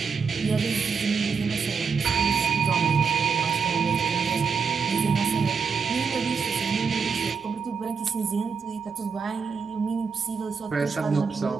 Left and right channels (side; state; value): left; quieter; 5.6 dB